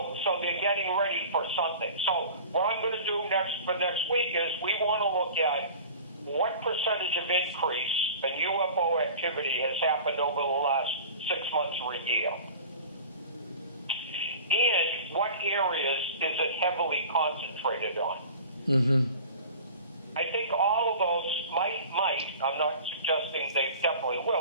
they're getting ready for something. So what I'm going to do for next week is we want to look at what percentage of increase in UFO activity has happened over the last 6 months or a year. And what areas is it heavily concentrated on? I think all of those might, I'm not suggesting they definitely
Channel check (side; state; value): both; inverted; correlation -0.40